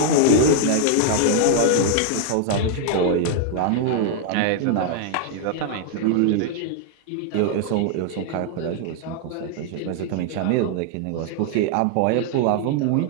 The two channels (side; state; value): both; different; correlation 0.00